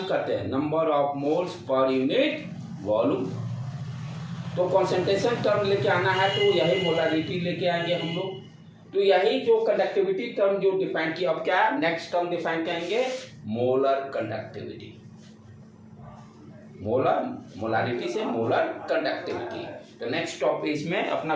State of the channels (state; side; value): identical; both; correlation 1.00